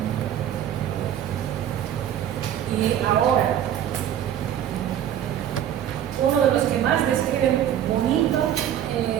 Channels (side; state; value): left; quieter; 10.4 dB